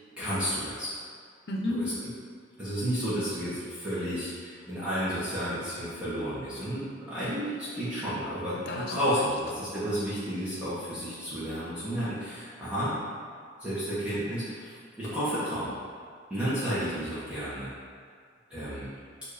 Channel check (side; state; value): both; normal; correlation 0.42